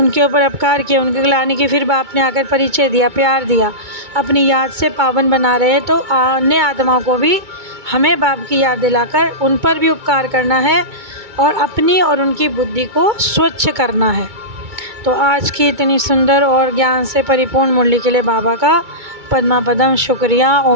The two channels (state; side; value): late; left; 2.2 ms